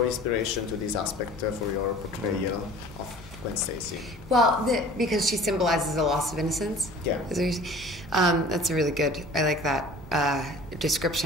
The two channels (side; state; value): both; normal; correlation 0.46